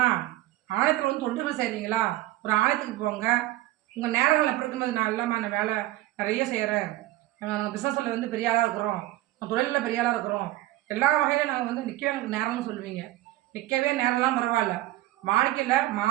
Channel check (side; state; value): left; quieter; 16.1 dB